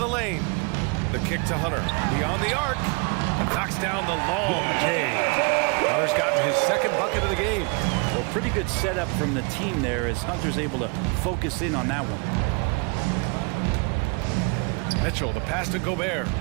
lane. The kick to Hunter, beyond the arc, and knocks down the long J. Hunter's gotten his second bucket of the game. Well, pretty good setup from the team there as Hunter's able to focus in on that one. Mitchell, the pass to Gobert.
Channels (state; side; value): quieter; left; 32.0 dB